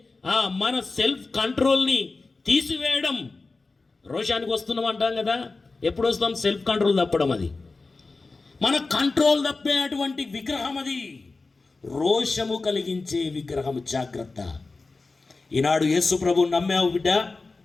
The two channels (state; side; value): quieter; right; 3.7 dB